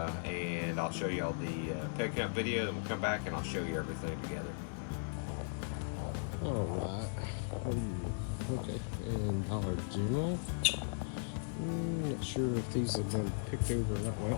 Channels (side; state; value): right; silent; 53 dB below the other